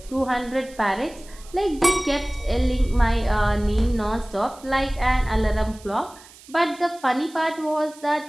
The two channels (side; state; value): right; noise; hiss, 22 dB below the sound